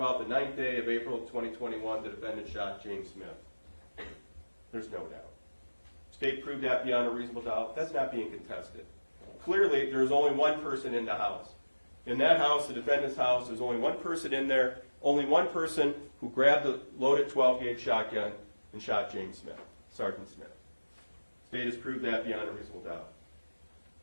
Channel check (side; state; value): both; inverted; correlation -1.00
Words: the 9th day of April 2021, the defendant shot James Smith. There's no doubt. State proved that beyond a reasonable doubt. That's not being contested. Clearly, there's only one person in the house. In that house, the defendant's house, there's only one person in there, only one person who grabbed the loaded 12-gauge shotgun and shot James Smith, Sergeant Smith. State has proved that beyond a reasonable doubt.